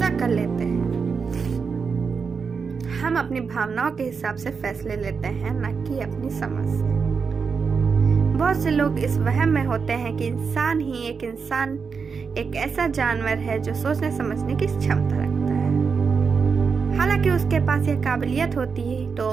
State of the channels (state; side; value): quieter; left; 5.5 dB